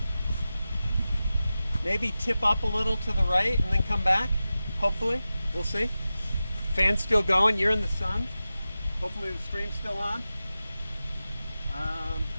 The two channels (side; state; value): both; inverted; correlation -0.94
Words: maybe tip up a little to the right and then come back. Hopefully. We'll see. Fan's still going. You're in the sun. Hopefully the stream's still on.